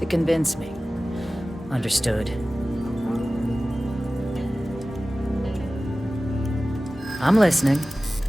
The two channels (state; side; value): normal; both; correlation 0.96